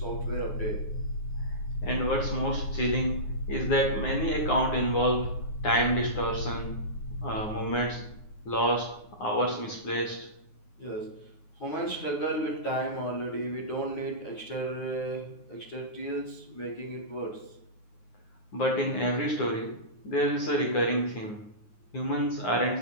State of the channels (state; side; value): late; right; 9.6 ms